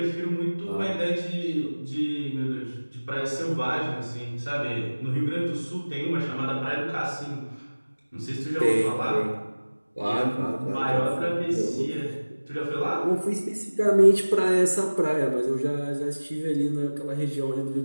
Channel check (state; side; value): inverted; both; correlation -1.00